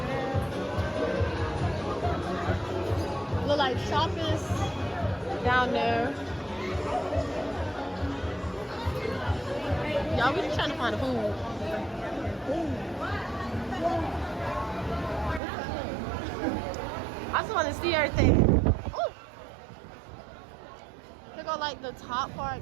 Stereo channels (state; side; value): drops out; left; at 15.4 s